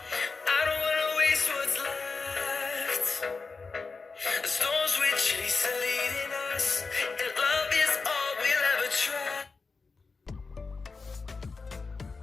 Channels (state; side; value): quieter; right; 4.4 dB